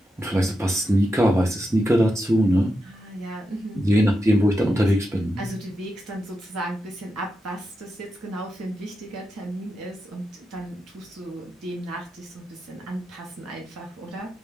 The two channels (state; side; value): normal; both; correlation 0.87